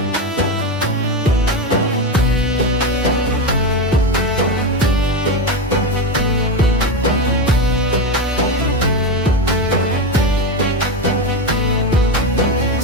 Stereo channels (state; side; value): normal; both; correlation 0.15